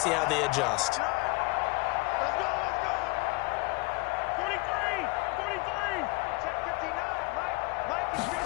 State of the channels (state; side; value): quieter; right; 25.6 dB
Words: see how they adjust. Let's go. 43. Check 59. Mike is